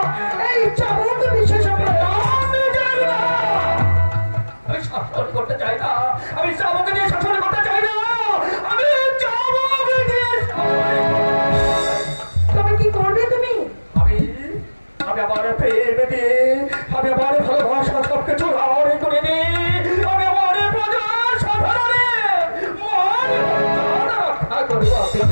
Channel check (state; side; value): inverted; both; correlation -1.00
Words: এই চাবুক বিশেষ প্রয়োজন। আমি শাসন করতে চাই না, আমি চাবুকে দিয়ে শাসন করতে চাই না, আমি চাবুক দিয়ে তো